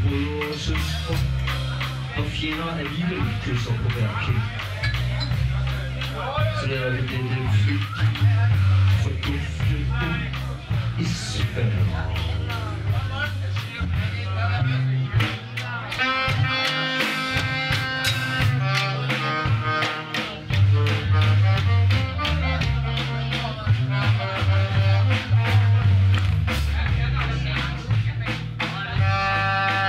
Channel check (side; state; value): both; identical; correlation 1.00